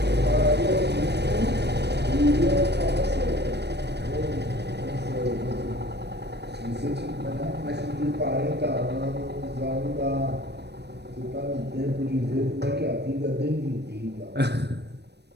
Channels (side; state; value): left; late; 0.49 ms